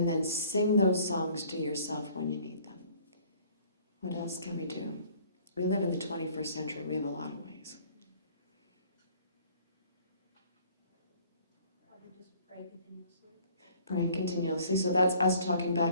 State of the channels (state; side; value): inverted; both; correlation -0.55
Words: then sing those songs to yourself when you need them. What else can we do? We live in the 21st century. We have a lot of ways. Just pray continuously. Praying continuously. So that's us talking